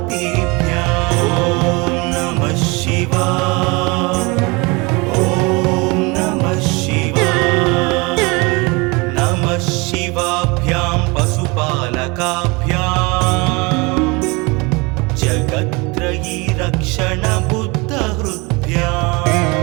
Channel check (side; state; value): left; quieter; 26.8 dB